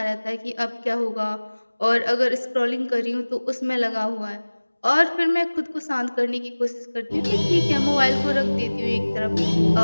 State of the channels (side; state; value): both; inverted; correlation -1.00